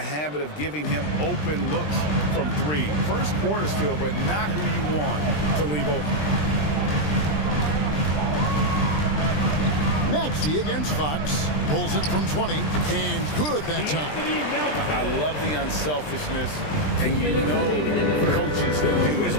of giving him open looks from 3. First quarter still, but not who you want to leave open. Maxey against Fox. Pulls it from 20. And good that time. I love the unselfishness, and you know coaches do as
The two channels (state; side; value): late; right; 20 ms